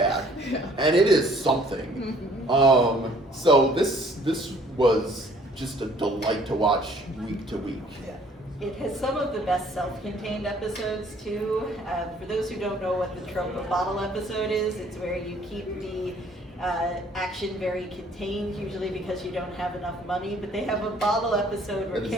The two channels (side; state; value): both; normal; correlation 0.58